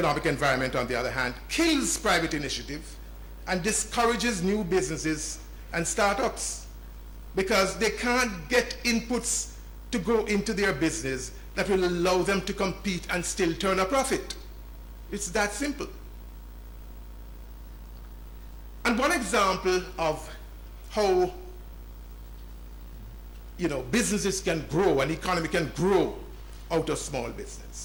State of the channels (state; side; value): identical; both; correlation 1.00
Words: environment, on the other hand, kills private initiative and discourages new businesses and startups because they can't get inputs to go into their business that will allow them to compete and still turn a profit. It's that simple. And one example of how you know, businesses can grow, an economy can grow out of small